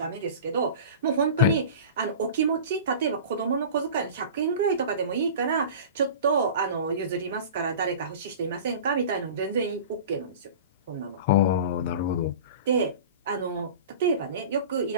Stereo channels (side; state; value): both; inverted; correlation -0.36